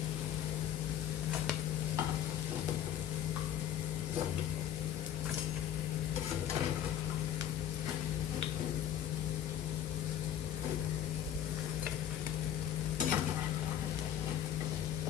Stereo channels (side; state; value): right; quieter; 10.4 dB